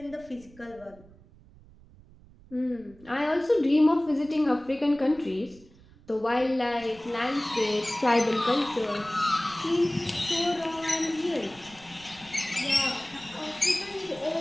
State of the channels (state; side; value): noise; right; rumble, 24 dB below the sound